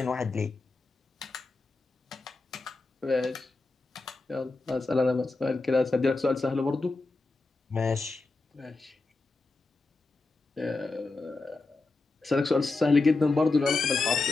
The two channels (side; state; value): right; quieter; 3.5 dB